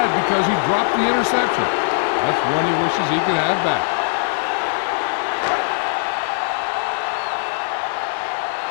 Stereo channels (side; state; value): right; silent; digital silence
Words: because he dropped the interception. That's one he wishes he could have back.